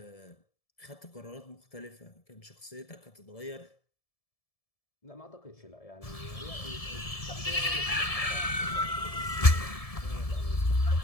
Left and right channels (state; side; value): late; right; 1.7 ms